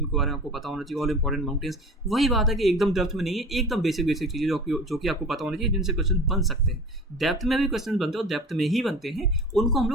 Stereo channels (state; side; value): normal; both; correlation 0.38